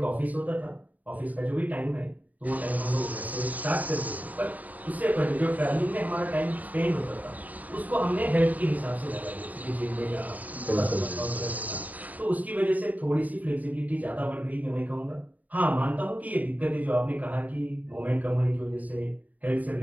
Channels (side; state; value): left; late; 0.076 ms